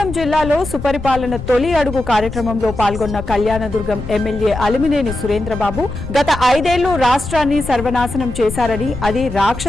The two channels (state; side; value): noise; left; rumble, 9 dB below the sound